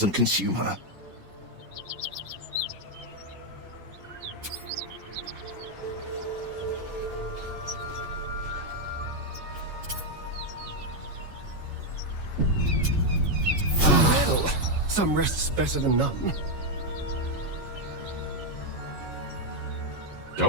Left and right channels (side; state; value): left; late; 6.4 ms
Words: consume her. Well, some rest's better than none.